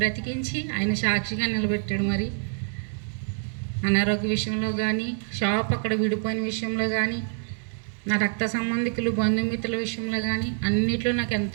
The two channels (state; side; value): silent; left; 61 dB below the other